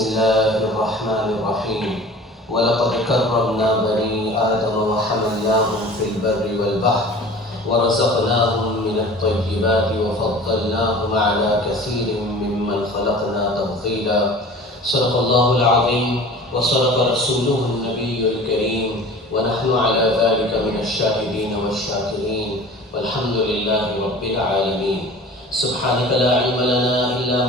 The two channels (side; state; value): both; normal; correlation 0.41